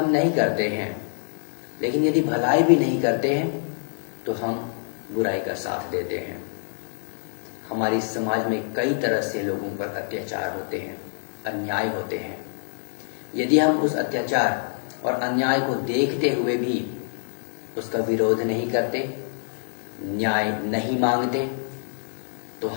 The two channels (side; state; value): right; silent; digital silence